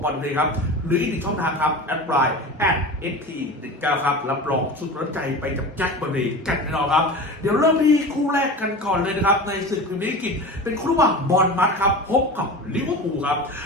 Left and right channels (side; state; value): both; normal; correlation 0.31